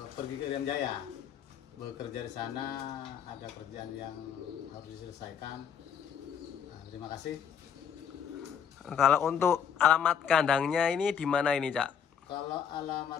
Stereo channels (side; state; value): right; quieter; 7.8 dB